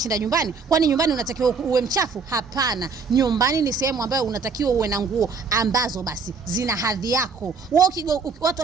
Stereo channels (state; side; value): quieter; left; 4.9 dB